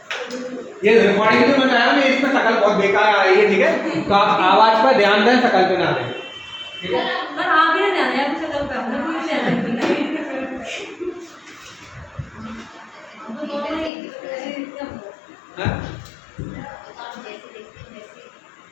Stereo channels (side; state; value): right; drops out; at 13.9 s